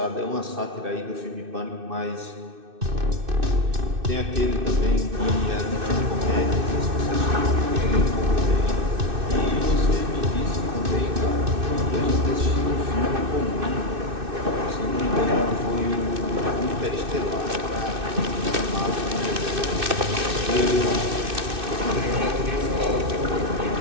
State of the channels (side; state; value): left; late; 2.6 ms